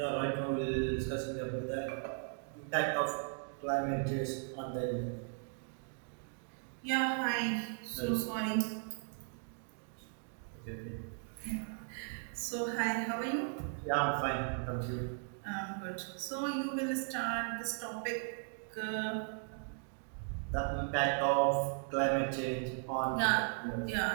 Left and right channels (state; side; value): silent; left; 53 dB below the other